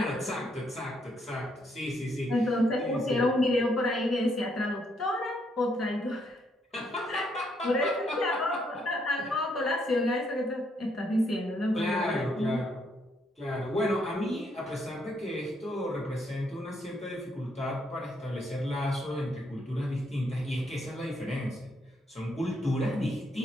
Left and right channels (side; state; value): both; normal; correlation 0.73